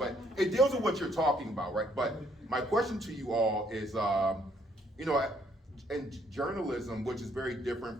it deals with what you're talking about, right? But my question to you all is, you know, in journalism, which is very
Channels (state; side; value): normal; both; correlation 0.67